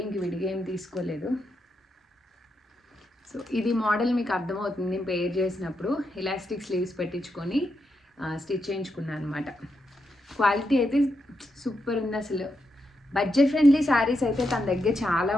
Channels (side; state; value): both; normal; correlation 0.83